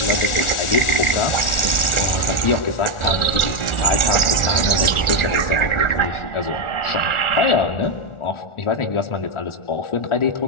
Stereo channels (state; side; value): late; right; 1.4 ms